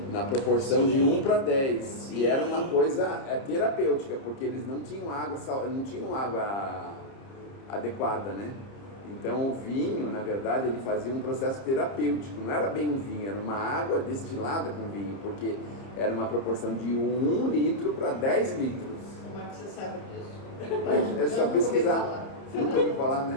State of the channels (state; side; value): late; right; 30 ms